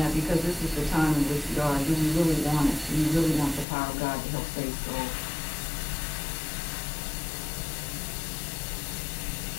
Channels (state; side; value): drops out; right; at 3.7 s